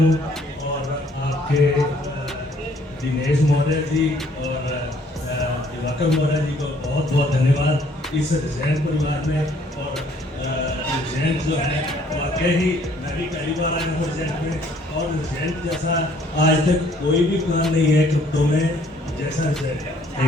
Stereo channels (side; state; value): both; normal; correlation 0.62